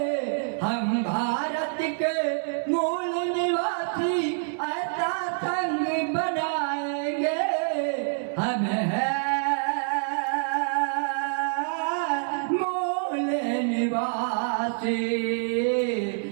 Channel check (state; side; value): silent; left; 59 dB below the other